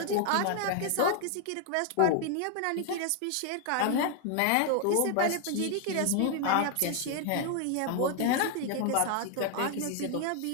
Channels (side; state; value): both; different; correlation 0.00